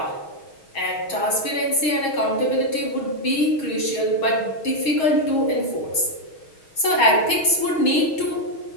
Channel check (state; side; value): late; right; 6.4 ms